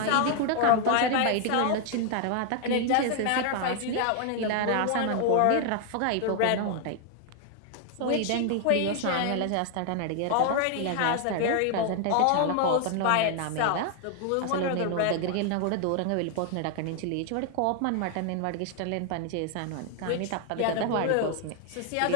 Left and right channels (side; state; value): both; different; correlation 0.00